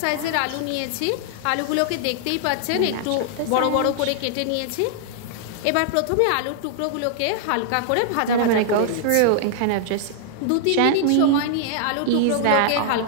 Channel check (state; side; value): different; both; correlation -0.01